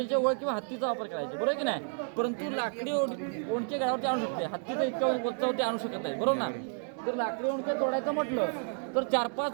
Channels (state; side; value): silent; left; 57 dB below the other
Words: वळ किंवा हत्तीचा वापर करायचे, बरोबर की नाही? परंतु लाकडी ओंडके गडावरती आणू शकते, हत्तीचा इतक्या वरती आणू शकत नाही, बरोबर ना? जर लाकडी ओंडके तोडायचं म्हटलं तर